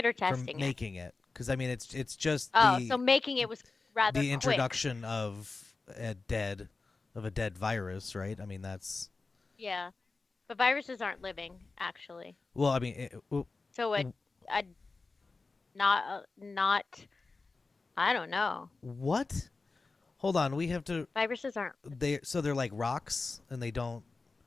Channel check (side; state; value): right; quieter; 3.9 dB